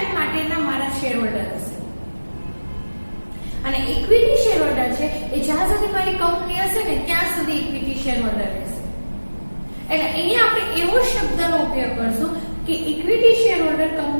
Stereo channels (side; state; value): both; inverted; correlation -1.00